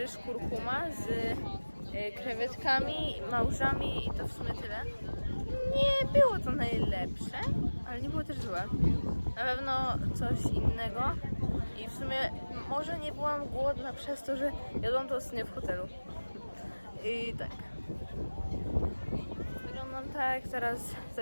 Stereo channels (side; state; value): both; inverted; correlation -1.00